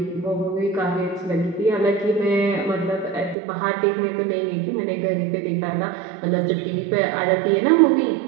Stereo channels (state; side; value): drops out; left; at 3.4 s